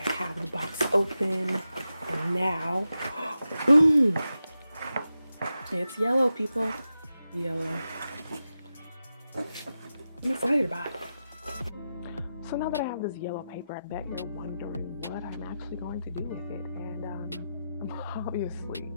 the box open, and now, boom! It's yellow, people. Yellow. I'm excited about it. So now that I have this yellow paper, I bet you're wondering what I'm actually going to do with it. And I'm obviously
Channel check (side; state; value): both; inverted; correlation -0.90